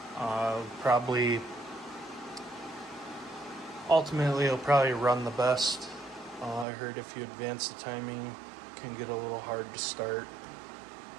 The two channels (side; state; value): left; drops out; at 6.7 s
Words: probably, ultimately it'll probably run the best. I heard if you advance the timing, it can get a little hard to start.